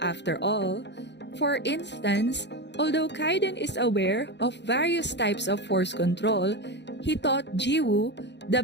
all. For instance, although Kayden is aware of various types of force control, he taught Jiwoo the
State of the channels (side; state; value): right; late; 0.51 ms